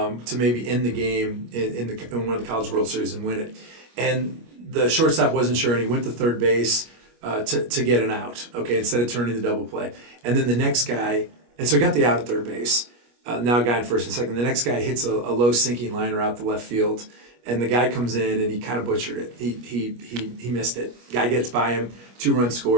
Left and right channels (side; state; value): left; late; 25 ms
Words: maybe end the game in one of the College World Series and win it, and the shortstop wasn't sure, and he went to third base to get an out, okay, instead of turning the double play. And then the next guy, and so he got the out at third base, now a guy in first and second. The next guy hits a low sinking liner out the left field, and the guy comes in and he kind of butchered it. He missed it. Guy gets by him, 2-run